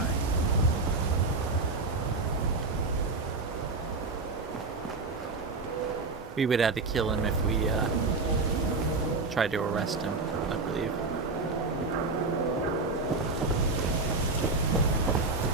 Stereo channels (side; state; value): left; quieter; 3.7 dB